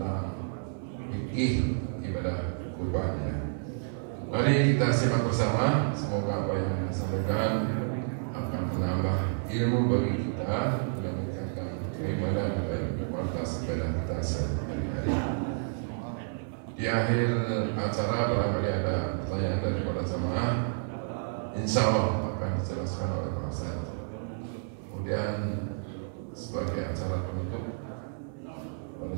fikih ibadah kurban, ya. Mari kita simak bersama. Semoga apa yang disampaikan akan menambah ilmu bagi kita dan meningkatkan keimanan dan kualitas ibadah kita sehari-hari. Di akhir acara barangkali ada pertanyaan dari para jamaah, insya Allah akan dijelaskan oleh Pak Ustaz. Kemudian sebagai acara penutup, para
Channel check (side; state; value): left; silent; 58 dB below the other